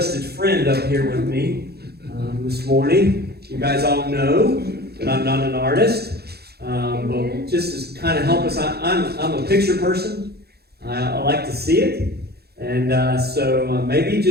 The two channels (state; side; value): late; left; 0.46 ms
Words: friend up here with me this morning. You guys all know that I'm not an artist. But just to kind of help us, I'm a picture person. I like to see it. And so